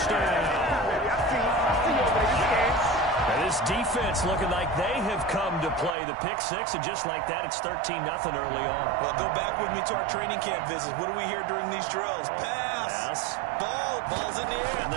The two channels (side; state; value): left; drops out; at 6.0 s